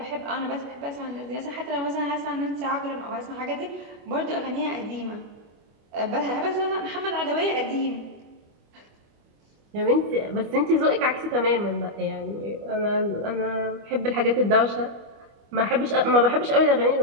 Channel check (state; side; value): late; left; 25 ms